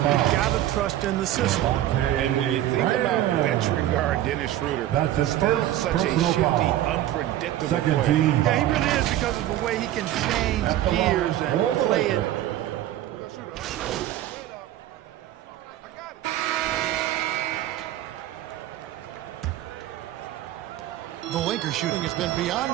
got to trust in the system. And when you think about veteran guard Dennis Schroeder, that's his still first such a shifty, unpredictable player. Yeah, he really is, because of the way he can change gears and play it. The Lakers shooting has been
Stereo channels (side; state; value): left; quieter; 13.2 dB